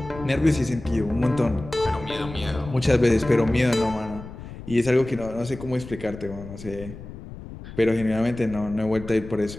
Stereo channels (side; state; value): left; noise; rumble, 13 dB below the sound